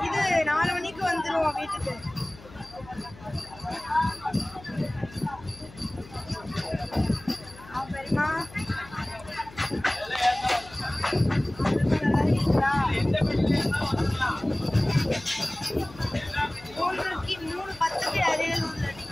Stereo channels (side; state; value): left; noise; hum, 20 dB below the sound